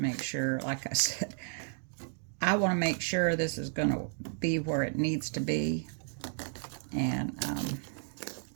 make sure, like I said, I want to make sure this is going to be where it needs to be. And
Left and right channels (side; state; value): left; silent; 56 dB below the other